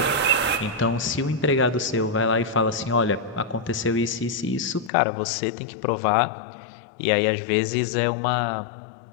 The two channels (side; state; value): right; drops out; at 4.9 s